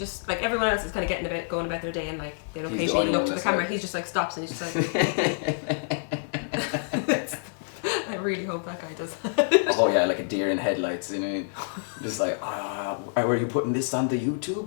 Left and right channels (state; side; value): silent; right; digital silence